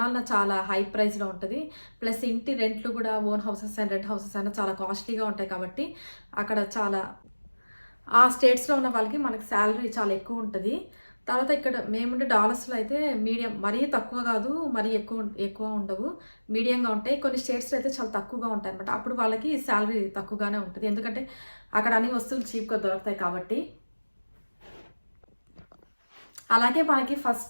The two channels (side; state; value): both; inverted; correlation -1.00